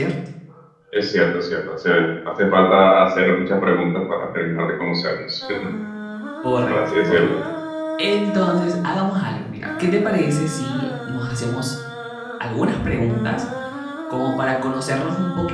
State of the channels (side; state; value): both; identical; correlation 1.00